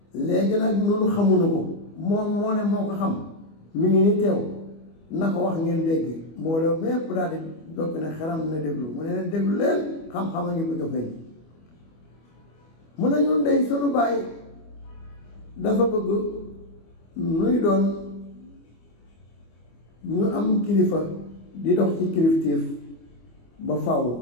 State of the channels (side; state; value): right; late; 25 ms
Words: léegi nag noonu xamuñu ko moom moo ne moo ko xam mi ngi ni teew na ko wax ngeen dégg mbooloo mépp daal di dokk ne xaram na déglu mu ne leen déglu leen xam-xam a ngi bëgg a feeñ mu ne ñun dey sunu baay dafa bëgg nuy doon ñu am kilifa di dox ci kilifteef ba faw